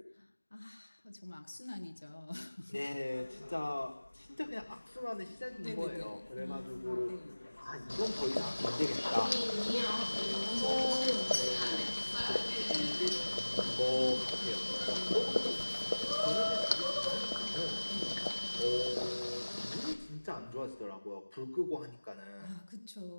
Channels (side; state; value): both; inverted; correlation -1.00